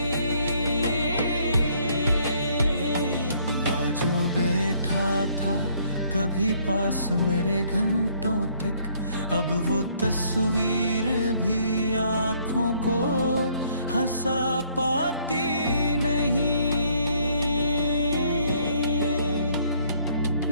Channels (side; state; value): both; inverted; correlation -0.65